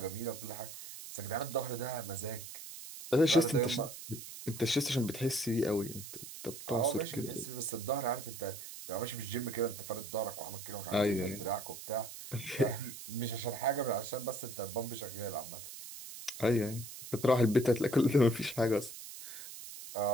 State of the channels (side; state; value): right; noise; hiss, 11 dB below the sound